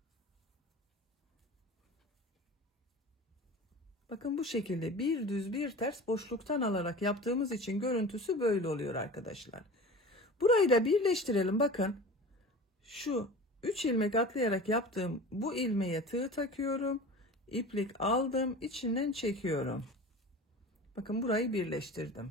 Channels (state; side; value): normal; both; correlation 0.36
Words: Bakın bu şekilde bir düz bir ters boşluktan alarak yaptığımız için görüntüsü böyle oluyor arkadaşlar. Burayı da birleştirelim. Bakın şu 3 ilmek atlayarak yaptığım bu ilmeğe tığ takıyorum. İplik aldım. İçinden çekiyorum. Bakın burayı